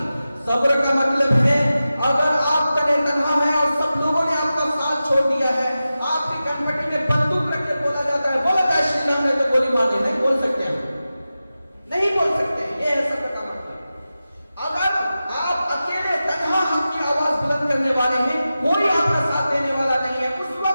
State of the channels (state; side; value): inverted; both; correlation -0.94